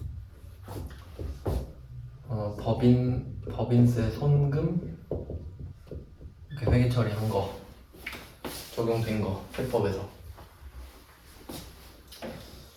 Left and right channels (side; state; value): both; identical; correlation 1.00